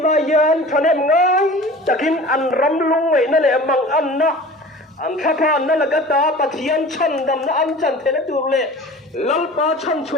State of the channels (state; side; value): normal; both; correlation 0.40